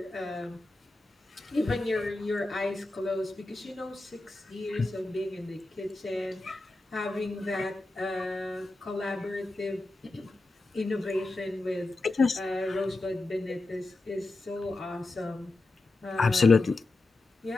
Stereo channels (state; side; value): quieter; right; 3.0 dB